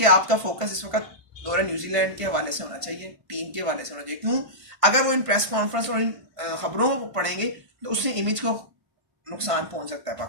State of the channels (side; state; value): left; late; 1.5 ms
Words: आपका फोकस इस वक्त दौरे न्यूजीलैंड के हवाले से होना चाहिए, टीम के हवाले से होना चाहिए। क्यों? अगर वो इन प्रेस कॉन्फ्रेंस और इन खबरों को पढ़ेंगे तो उससे इमेज को नुकसान पहुंच सकता है